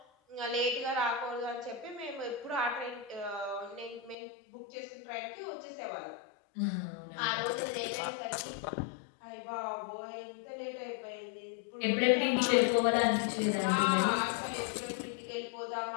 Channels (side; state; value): right; drops out; at 4.2 s